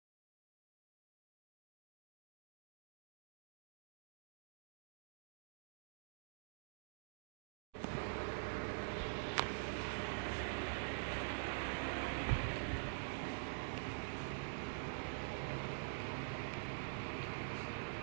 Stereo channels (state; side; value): silent; left; digital silence